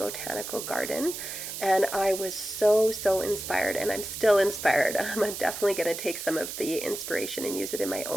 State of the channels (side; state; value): right; noise; hiss, 7 dB below the sound